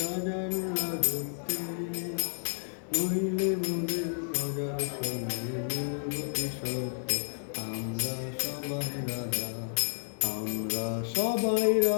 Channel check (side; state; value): right; silent; digital silence